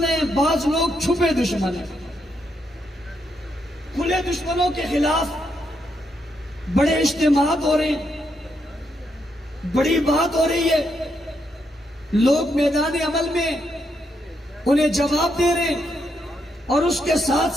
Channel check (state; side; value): normal; both; correlation 0.79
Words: ہیں, بعض لوگ چھپے دشمن ہیں. کھلے دشمنوں کے خلاف بڑے اجتماعات ہو رہے ہیں, بڑی بات ہو رہی ہے, لوگ میدان عمل میں انہیں جواب دے رہے ہیں, اور اس کے ساتھ